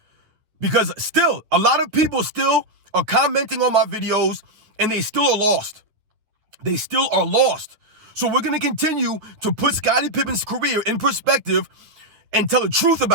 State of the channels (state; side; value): late; left; 9.5 ms